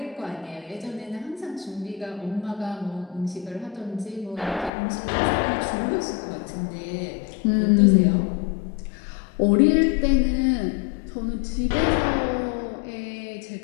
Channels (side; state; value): right; drops out; at 4.7 s